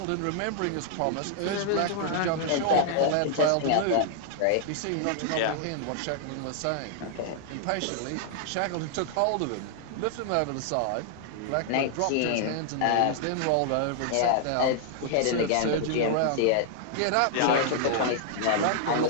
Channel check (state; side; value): different; both; correlation -0.01